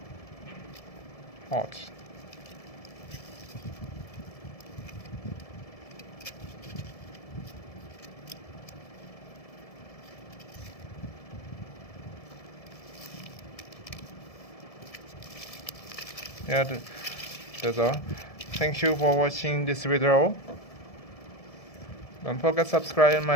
Hot. Yeah, that's all. Thank you for watching this video. Don't forget to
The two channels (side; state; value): right; late; 1.7 ms